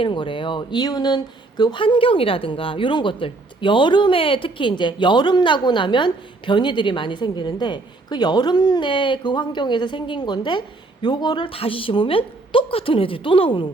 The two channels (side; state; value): left; quieter; 3.2 dB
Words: 거래요. 이유는 그 환경이라든가 이런 것들, 여름에 특히 이제 여름 나고 나면 변이들이 많이 생기는데 그 여름 내 그 환경에서 생긴 건데 요거를 다시 심으면 똑같은 애들이 또 나오는